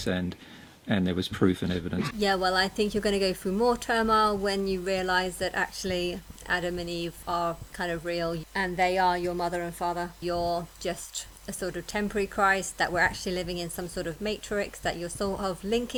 and there was proof and evidence. Yeah, well, I think you're going to go through more turmoil when you realise that actually Adam and Eve are kind of real, and they are your mother and father. You're just a sort of temporary Christ, that we're actually living in some sort of matrix, that you're sort of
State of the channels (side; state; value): both; identical; correlation 1.00